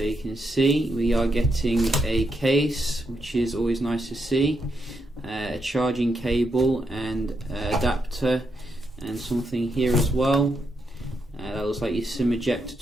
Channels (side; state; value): both; normal; correlation 0.81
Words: you can see we are getting a case, which is always nice to see. A charging cable and adapter and something here as well. That looks like your SIM ejector